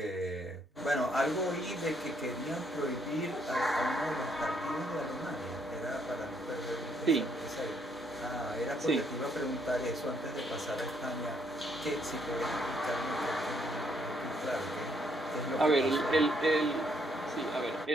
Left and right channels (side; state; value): both; normal; correlation 0.71